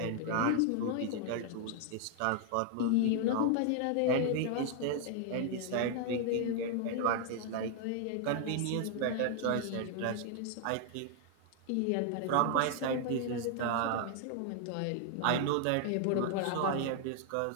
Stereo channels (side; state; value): both; different; correlation 0.00